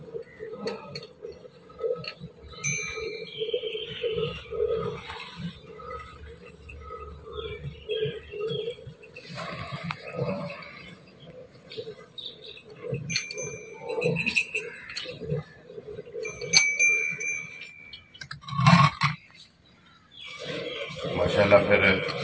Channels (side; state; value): both; identical; correlation 1.00